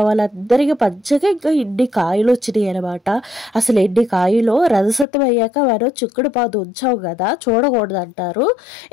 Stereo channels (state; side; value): drops out; right; at 5.1 s